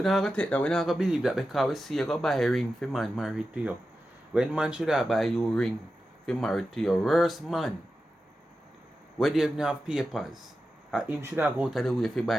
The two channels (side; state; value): both; normal; correlation 0.92